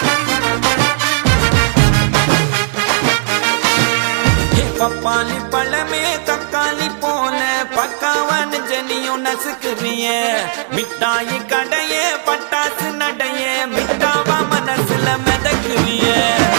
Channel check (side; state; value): left; silent; digital silence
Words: பப்பாளி பழமே தக்காளி போல பக்காவான ஜனியும் நசுக்குறிய மிட்டாயி கடைய பட்டாசு நடைய மிட்டாவா மனசுல மிதக்குறிய